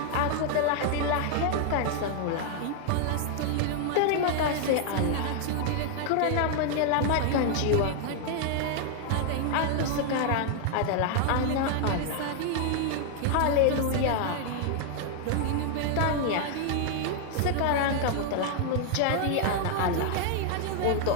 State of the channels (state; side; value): different; both; correlation 0.00